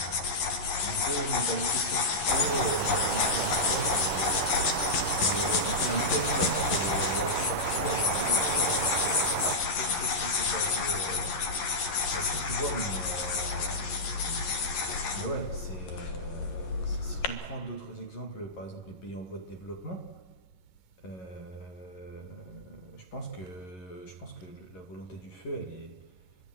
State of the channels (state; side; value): late; right; 11 ms